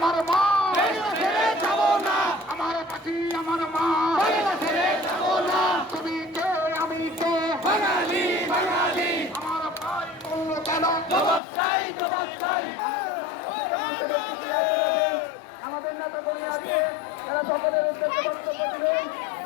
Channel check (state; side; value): drops out; right; at 11.4 s